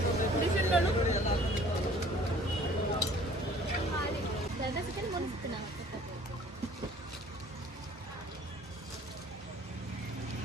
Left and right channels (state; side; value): normal; both; correlation 0.52